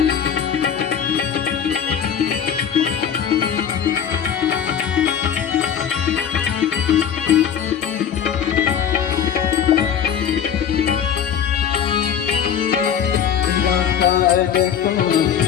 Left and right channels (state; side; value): quieter; right; 8.3 dB